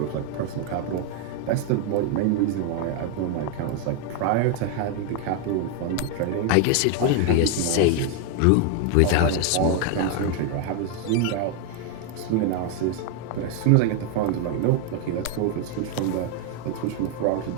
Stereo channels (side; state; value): both; different; correlation 0.01